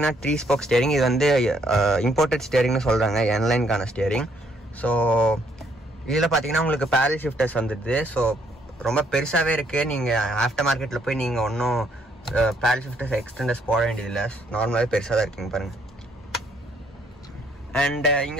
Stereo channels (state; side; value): normal; both; correlation 0.69